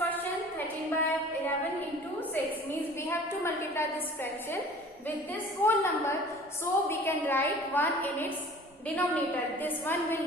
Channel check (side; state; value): both; normal; correlation 0.46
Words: 13 by 11 into 6 means we have to multiply this fraction with this whole number. So we can write 1 in its denominator. This one